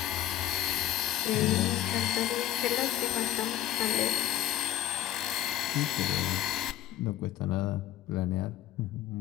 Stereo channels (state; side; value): quieter; right; 12.5 dB